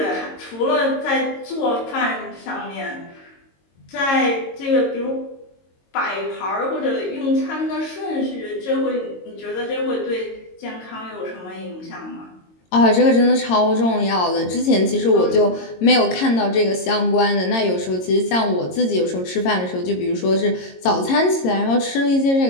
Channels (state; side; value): late; right; 22 ms